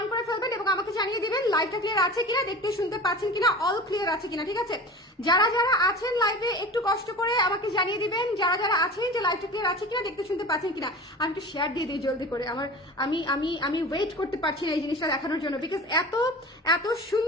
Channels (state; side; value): normal; both; correlation 0.35